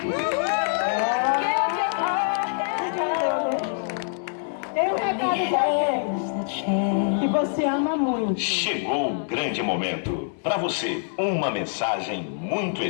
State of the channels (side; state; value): right; silent; digital silence